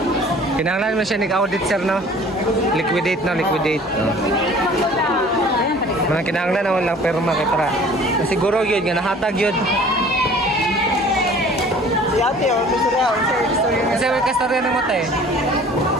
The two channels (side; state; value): both; normal; correlation 0.49